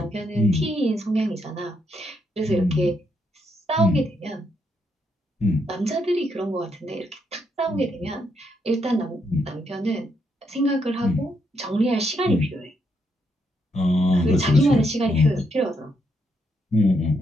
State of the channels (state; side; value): normal; both; correlation 0.77